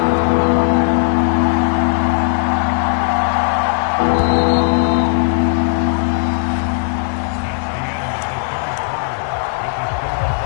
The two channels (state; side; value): silent; right; digital silence